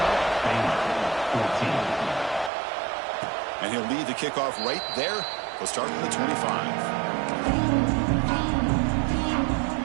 And he'll lead the kickoff right there. We'll start from the 25.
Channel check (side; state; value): left; drops out; at 2.5 s